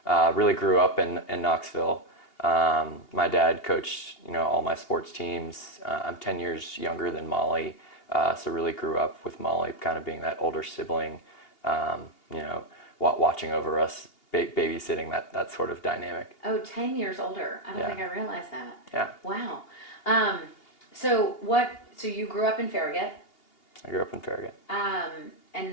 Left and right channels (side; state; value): right; late; 2.8 ms